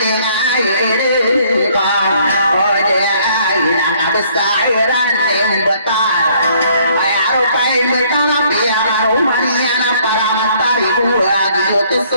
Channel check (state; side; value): inverted; both; correlation -0.63